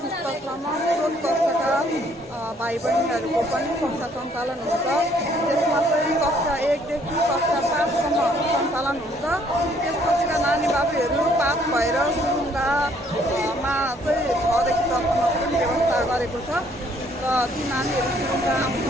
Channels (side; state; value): both; normal; correlation 0.64